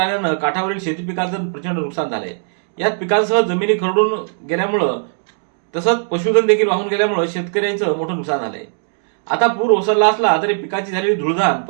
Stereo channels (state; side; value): silent; left; digital silence